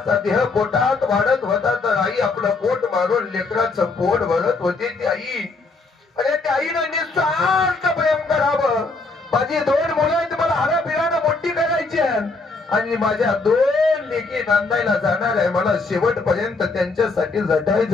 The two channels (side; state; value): right; quieter; 3.8 dB